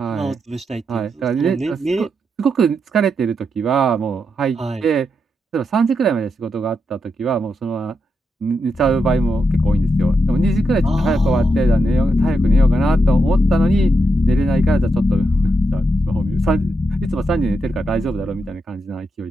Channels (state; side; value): normal; both; correlation 0.84